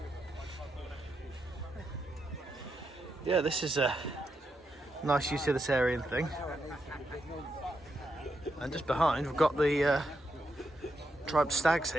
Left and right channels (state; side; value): normal; both; correlation 0.83